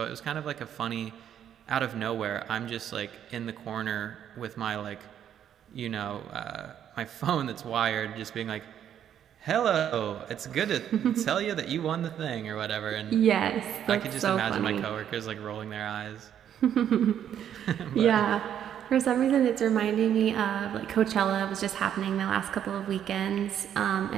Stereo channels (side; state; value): left; quieter; 9.7 dB